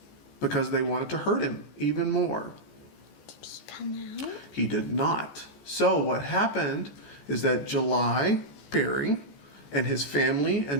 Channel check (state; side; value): late; right; 14 ms